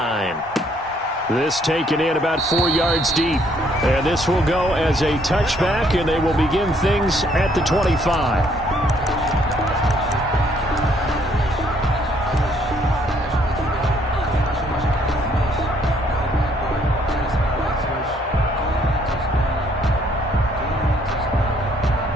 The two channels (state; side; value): normal; both; correlation 0.66